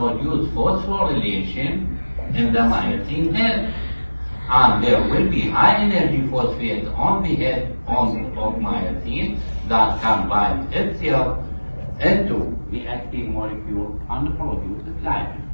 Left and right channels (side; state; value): both; inverted; correlation -1.00